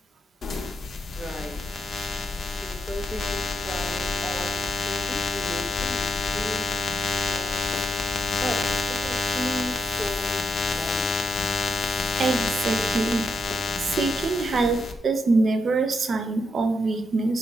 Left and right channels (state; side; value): normal; both; correlation 0.81